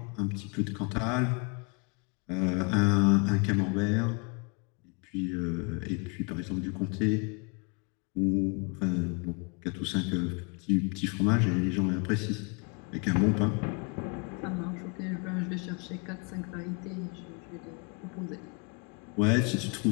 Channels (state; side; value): quieter; right; 32.7 dB